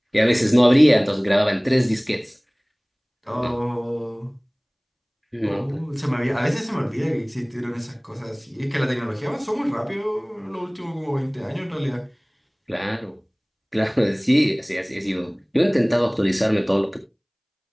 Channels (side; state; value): both; identical; correlation 1.00